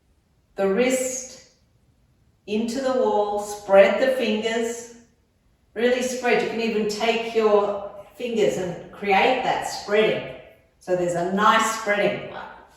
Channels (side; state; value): both; identical; correlation 1.00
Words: the wrist into the wall, spread the fingers, really spread. You can even take your fingers and create that spreading. So there's a nice spreading.